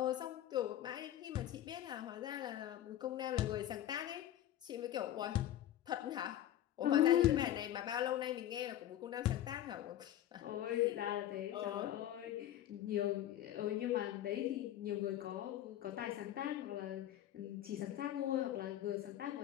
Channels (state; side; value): quieter; right; 12.2 dB